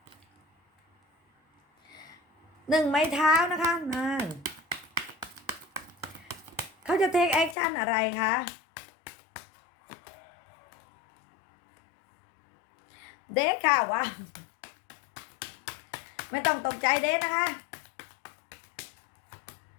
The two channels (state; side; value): drops out; right; at 7.6 s